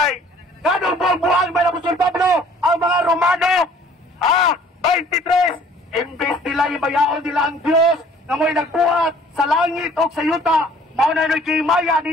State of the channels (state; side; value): normal; both; correlation 0.55